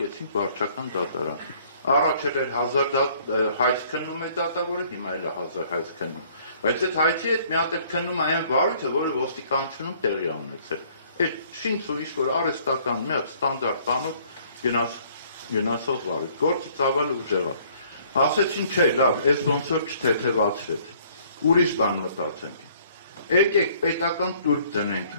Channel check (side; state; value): both; inverted; correlation -0.60